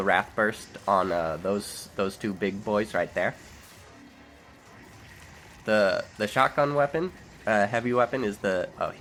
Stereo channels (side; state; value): both; identical; correlation 1.00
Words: Wrath Burst on those two big boys right there. The shotgun weapon, heavy weapon is the... Oh,